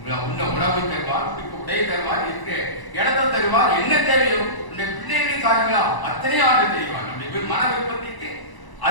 உன்ன உணவு தருவார், உடை தருவார், இருக்கிற இடத்தை தருவார், என்ன தேவையோ உன்னுடைய பிள்ளைகளின் காரியங்களா அத்தனை ஆண்டு தெரிவார். நம்முடைய மன விருப்பத்திற்கு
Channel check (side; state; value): right; late; 1.0 ms